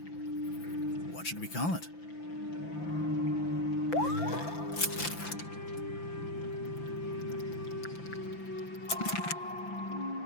What should we call it?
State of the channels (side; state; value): right; late; 5.9 ms